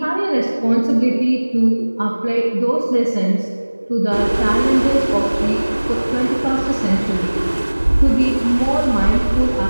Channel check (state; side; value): inverted; both; correlation -1.00